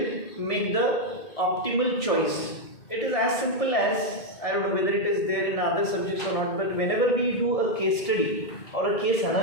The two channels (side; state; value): right; late; 1.7 ms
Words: make the optimal choice. It is as simple as, I don't know whether it is there in other subjects or not, but whenever we do a case study or a case